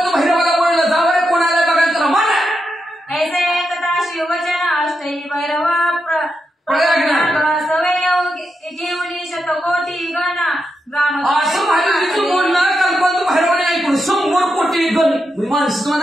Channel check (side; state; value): both; normal; correlation 0.85